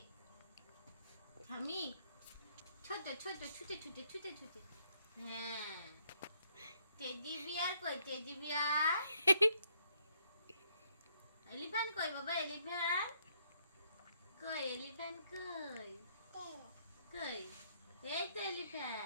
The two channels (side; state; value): both; inverted; correlation -0.71